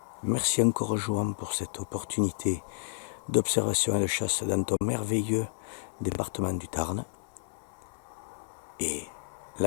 Merci encore Johan pour cette opportunité d'observation et de chasse dans ton merveilleux département du Tarn. Et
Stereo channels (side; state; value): right; silent; digital silence